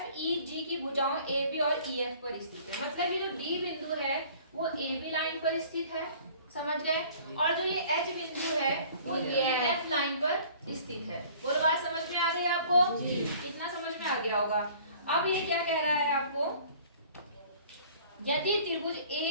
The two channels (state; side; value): inverted; both; correlation -0.51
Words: की भुजाओं AB और EF पर स्थित है। मतलब ये जो D बिंदु है वो AB लाइन पर स्थित है। समझ गए? और जो ये H बिंदु है वो EF लाइन पर स्थित है। बोलो, बात समझ में आ गई आपको? इतना समझ में आ गया होगा। अब ये क्या कह रहा है आपको, यदि त्रिभुज